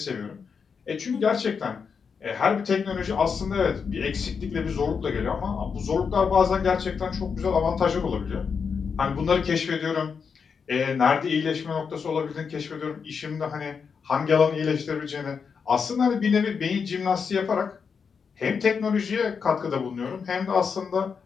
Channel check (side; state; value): right; quieter; 6.0 dB